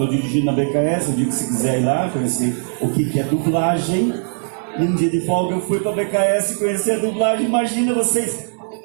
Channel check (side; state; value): left; silent; digital silence